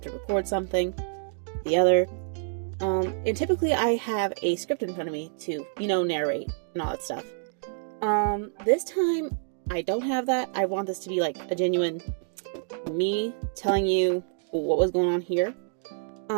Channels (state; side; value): silent; left; digital silence